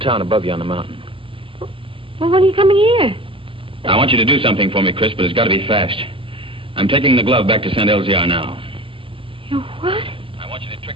above you on the mountain. Well, when are you coming here? I want you to do something for me, Chris, but it's got to be fast. I'm taking the glove back to St. Elzea now. You what? I want you to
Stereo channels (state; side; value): late; left; 0.25 ms